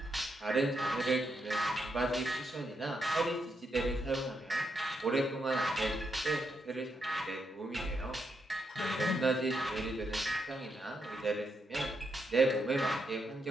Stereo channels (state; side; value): normal; both; correlation 0.81